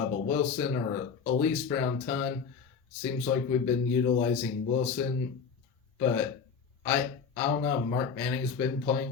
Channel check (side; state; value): right; quieter; 6.0 dB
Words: Wilson or Elise Brown-Tunn. Seems like we've been utilizing Wilson, but I don't know. Mark Manning's been playing